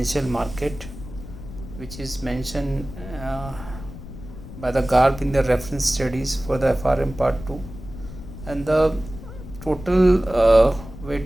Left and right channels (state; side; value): noise; left; rumble, 13 dB below the sound